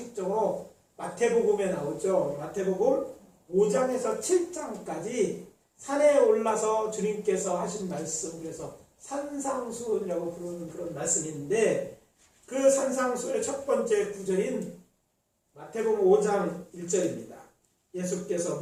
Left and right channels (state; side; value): identical; both; correlation 1.00